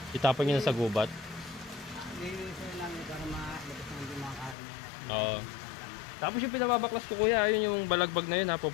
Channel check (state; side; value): drops out; right; at 4.5 s